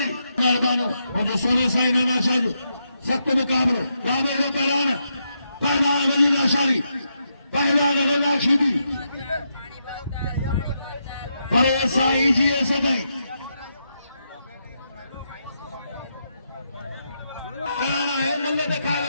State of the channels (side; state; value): both; inverted; correlation -0.82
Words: मेहरबानो और जो सोने साई नाना शाह सख्त मुकाबलो रामे को पहलान वजीला शारी पहलान रना खीदी परे साई जी सदाई है मल्ले ते खाए